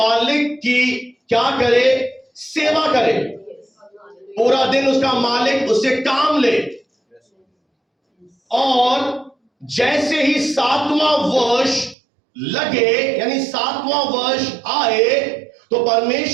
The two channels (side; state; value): left; drops out; at 12.0 s